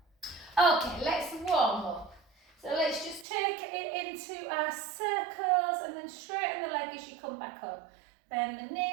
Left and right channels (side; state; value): left; drops out; at 3.2 s